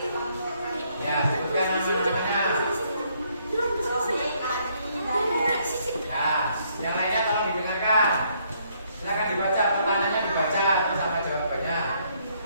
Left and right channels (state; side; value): inverted; both; correlation -0.70